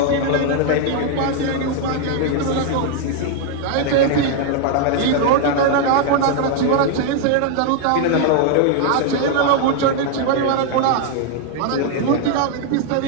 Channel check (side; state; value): both; different; correlation 0.00